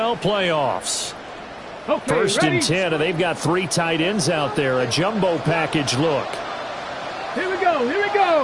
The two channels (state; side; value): identical; both; correlation 1.00